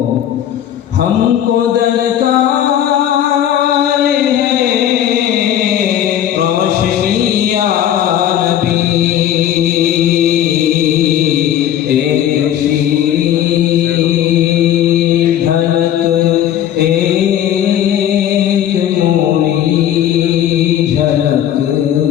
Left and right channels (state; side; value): quieter; right; 10.8 dB